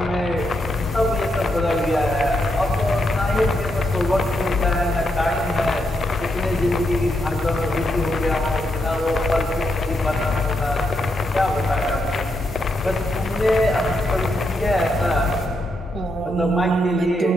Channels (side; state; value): both; normal; correlation 0.81